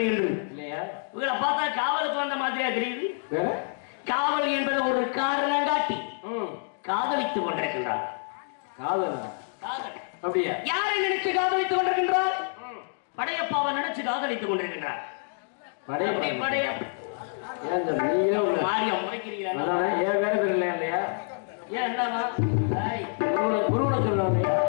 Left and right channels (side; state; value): right; silent; 60 dB below the other